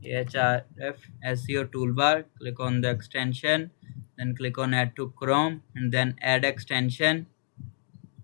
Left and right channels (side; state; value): right; silent; digital silence